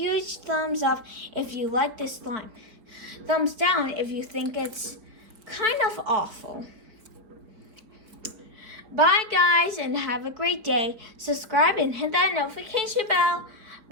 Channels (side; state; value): left; late; 4.2 ms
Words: thumbs up if you like this slime. Thumbs down if you think it's kind of awful. Bye guys and have a great day. Subscribe and hit that notification bell.